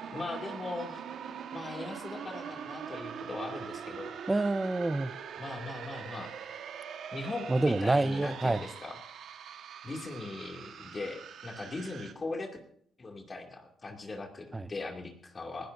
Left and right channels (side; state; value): both; normal; correlation 0.92